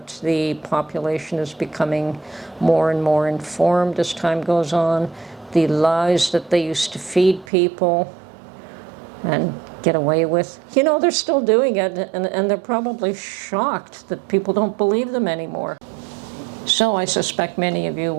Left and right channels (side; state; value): left; drops out; at 7.5 s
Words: The population is becoming more and more informed as time goes on. The lies that they used to feed people and get away with, you know, they're still doing it, and they're probably shocked that people don't believe them anymore. So I suspect many of you